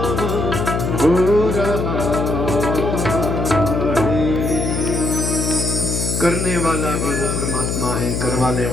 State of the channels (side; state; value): left; noise; hum, 1 dB below the sound